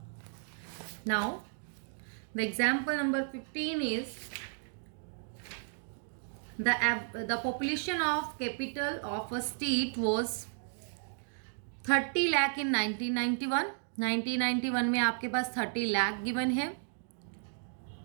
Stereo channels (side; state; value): left; silent; digital silence